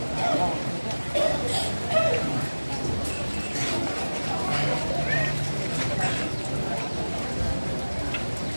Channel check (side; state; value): both; inverted; correlation -1.00